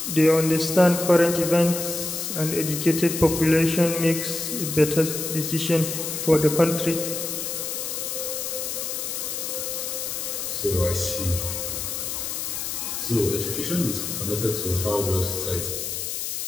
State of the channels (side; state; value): left; noise; hiss, 4 dB below the sound